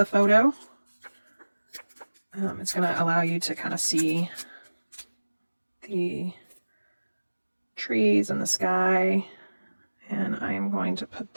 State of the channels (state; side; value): inverted; both; correlation -1.00